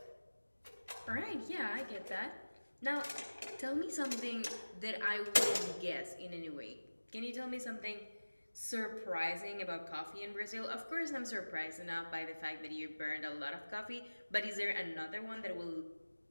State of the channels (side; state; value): both; inverted; correlation -1.00